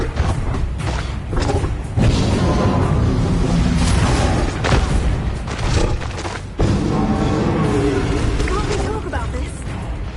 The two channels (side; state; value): both; identical; correlation 1.00